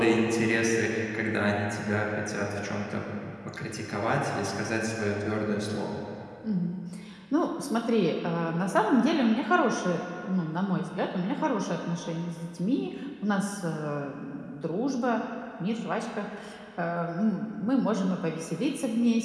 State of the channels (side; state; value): both; identical; correlation 1.00